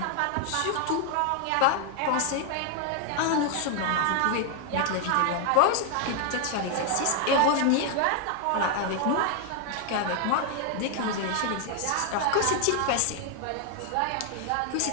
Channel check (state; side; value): different; both; correlation 0.00